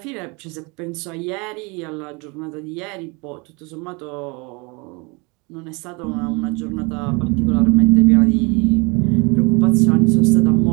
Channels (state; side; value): quieter; left; 29.1 dB